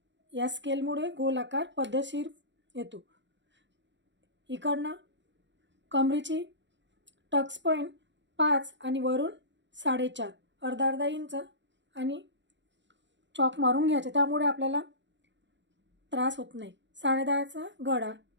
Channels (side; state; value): left; late; 0.53 ms